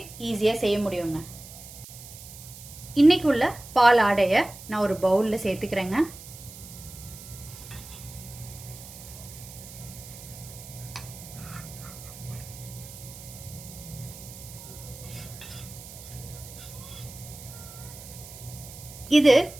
ஈஸியாக செய்ய முடியுங்க. இன்னைக்கு உள்ள பால் ஆடையை நான் ஒரு பவுலில் சேர்த்துக்கிறேங்க. இது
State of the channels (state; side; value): noise; right; hiss, 15 dB below the sound